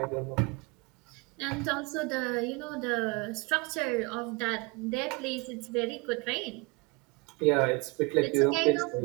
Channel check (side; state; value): left; quieter; 27.3 dB